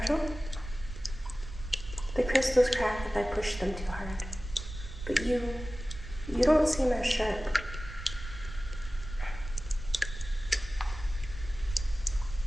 The crystals crack if I push them too hard. But you don't seem as sharp.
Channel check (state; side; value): noise; right; rumble, 11 dB below the sound